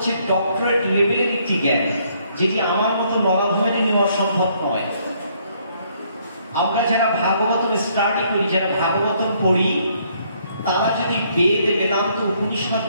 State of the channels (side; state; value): both; inverted; correlation -0.68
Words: ডক্টরেট লেভেলের একটি জ্ঞান, যেটি আমার মতো মরাধমে নেওয়া সম্ভব নয়। আমরা যারা ভাগবতম স্টাডি করি, যারা ভাগবতম পড়ি, তারা যদি বেদ, বেদান্ত, উপনিষদ,